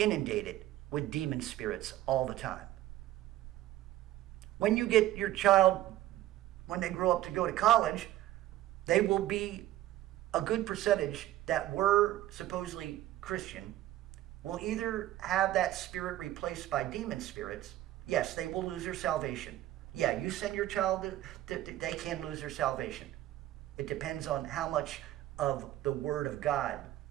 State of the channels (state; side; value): quieter; left; 14.4 dB